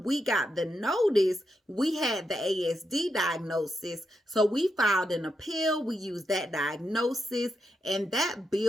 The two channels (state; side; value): normal; both; correlation 0.84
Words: we got the notice, we had the ASD diagnosis. So we filed an appeal. We used that diagnosis, and that